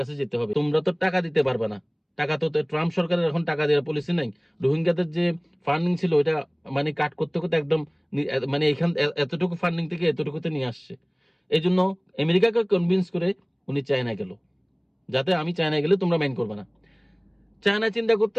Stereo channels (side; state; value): both; identical; correlation 1.00